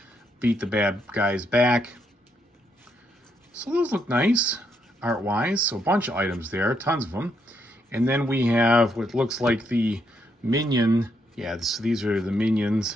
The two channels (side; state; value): both; normal; correlation 0.76